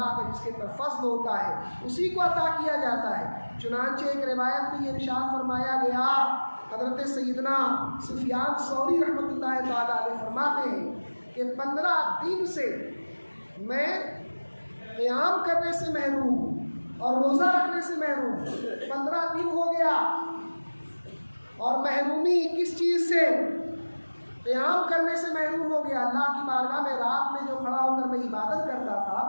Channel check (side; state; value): both; inverted; correlation -1.00